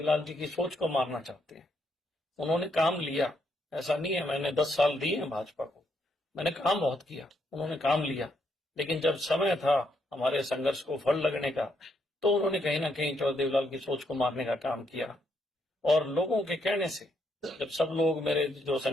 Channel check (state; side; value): normal; both; correlation 0.76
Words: जी की सोच को मारना चाहते हैं। उन्होंने काम लिया, ऐसा नहीं है मैंने 10 साल दिए हैं भाजपा को, मैंने काम बहुत किया, उन्होंने काम लिया, लेकिन जब समय था हमारे संघर्ष को फल लगने का, तो उन्होंने कहीं ना कहीं चौधरी देवीलाल की सोच को मारने का काम किया। और लोगों के कहने से, जब सब लोग मेरे जो